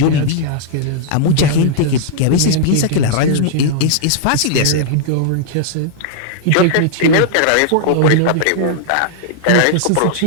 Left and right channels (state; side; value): different; both; correlation -0.01